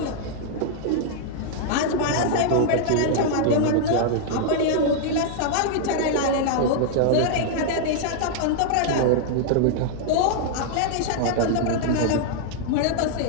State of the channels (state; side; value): different; both; correlation -0.01